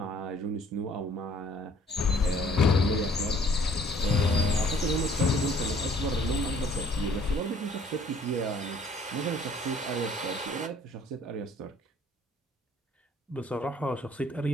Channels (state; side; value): normal; both; correlation 0.59